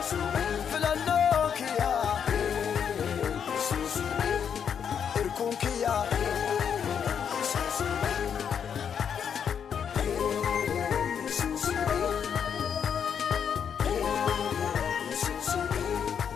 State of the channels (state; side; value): quieter; right; 7.7 dB